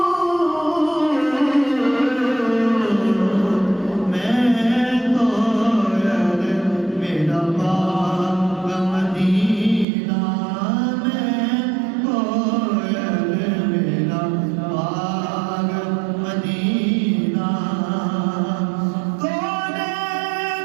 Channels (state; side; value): drops out; left; at 9.9 s